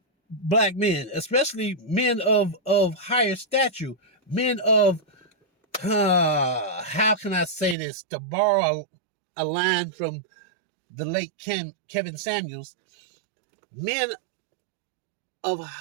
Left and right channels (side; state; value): left; drops out; at 7.8 s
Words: black men, especially men of higher stature, men of, how can I say this, to borrow a line from the late Kevin Samuels, men of